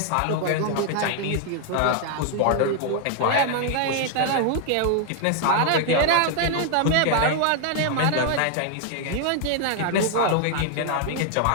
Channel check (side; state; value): both; different; correlation 0.00